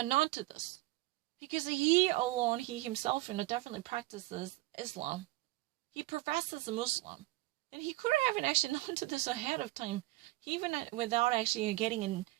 to this? Because he alone, he himself, definitely practices Islam. He professes a Muslim. And he could have actually known to this ahead of time, even without actually getting an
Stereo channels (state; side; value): quieter; left; 19.7 dB